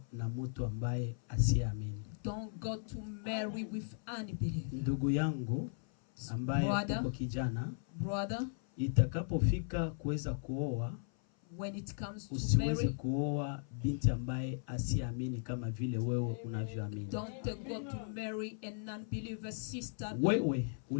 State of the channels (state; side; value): silent; right; 53 dB below the other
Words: na mtu ambaye asiamini. don't go to marry with unbeliever. Ndugu yangu ambaye Brother. uko kijana, Brother, itakapofika kuweza kuoa, when it comes to usiweze marry, kuoa binti ambaye asiamini kama vile wewe unavyoamini. don't go to marry a non-believer sister. Wewe